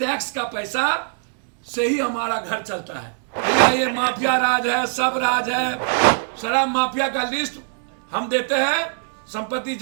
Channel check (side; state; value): left; silent; 64 dB below the other